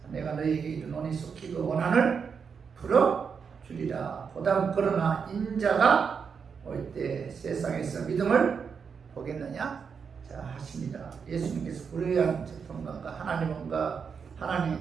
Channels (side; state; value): left; quieter; 6.2 dB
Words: 내가 너희에게 이르노니 속히 그 원한을 풀어주리라. 그러나 인자가 올 때 세상에서 믿음을 보겠느냐. 자, 하십니다. 예수님께서 불의한 재판관과 하나님